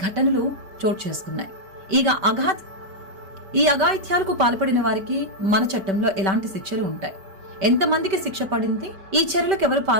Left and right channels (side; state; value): left; late; 5.2 ms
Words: ఘటనలు చోటు చేసుకున్నాయి? ఈ అఘాయిత్యాలకు పాల్పడిన వారికి మన చట్టంలో ఎలాంటి శిక్షలు ఉంటాయి? ఎంతమందికి శిక్ష పడింది? ఈ చర్యలకు ఎవరు